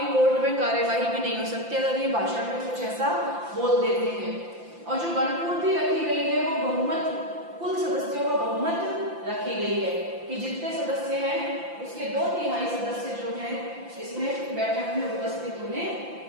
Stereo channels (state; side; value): late; left; 5.8 ms